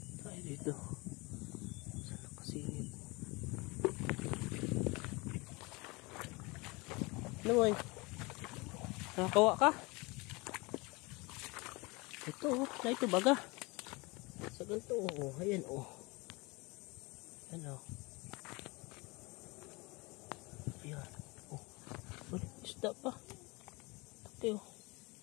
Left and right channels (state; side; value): quieter; right; 25.9 dB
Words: Tayo dito. Saan nakasingit? Ano boy? Nakakawa ka? Ito oh, na ito baga. Sa ganito oh, ayan oh. Ayan oh. Ayan oh. Uy, isda pa. Taki oh.